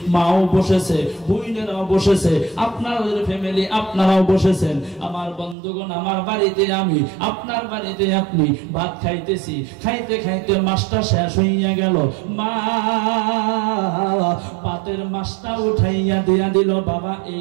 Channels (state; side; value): drops out; left; at 5.6 s